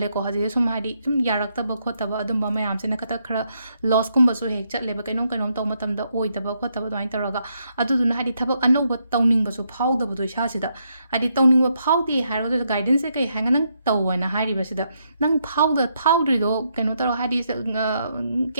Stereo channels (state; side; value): inverted; both; correlation -0.78